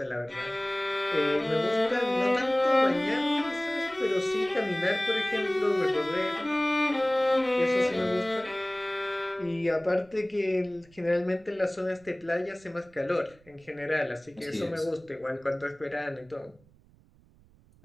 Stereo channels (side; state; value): right; noise; rumble, 29 dB below the sound